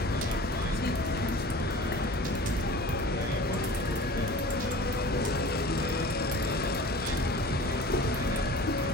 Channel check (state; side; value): normal; both; correlation 0.40